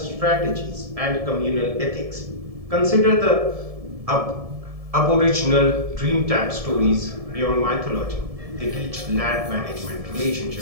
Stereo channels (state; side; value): late; left; 1.7 ms